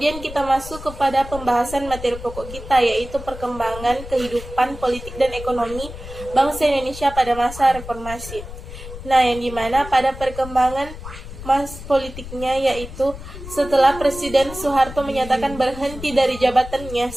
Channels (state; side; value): noise; left; rumble, 12 dB below the sound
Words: kita masuk kepada pembahasan materi pokok kita, yaitu perkembangan kehidupan politik dan ekonomi bangsa Indonesia pada masa reformasi. Nah, yang dimana pada perkembangan politiknya yaitu setelah Presiden Soeharto menyatakan berhenti dari jabatannya